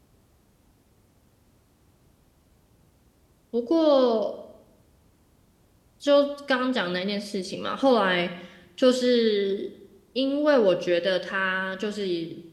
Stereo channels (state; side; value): identical; both; correlation 1.00